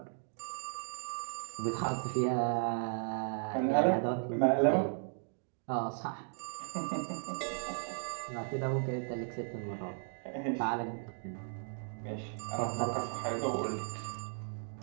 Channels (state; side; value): silent; left; digital silence